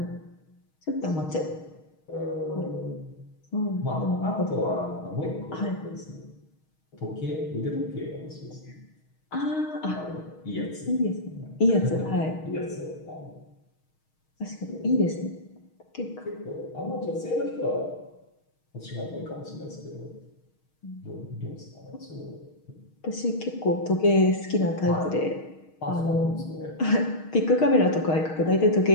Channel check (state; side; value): late; right; 6.4 ms